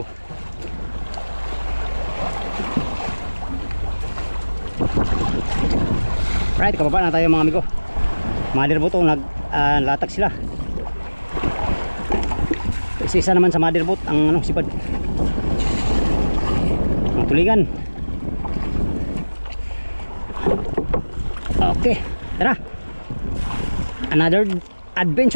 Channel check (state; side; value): inverted; both; correlation -1.00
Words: Right, kababa na tayo mga amigo. Motherboat naglatag sila. Isa naman sa motherboat ang sipad. Ang tulingan. Okay, tara. Another